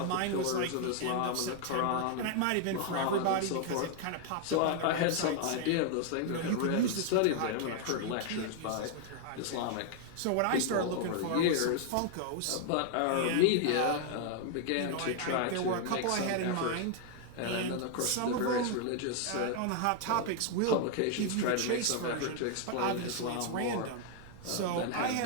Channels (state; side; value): different; both; correlation 0.00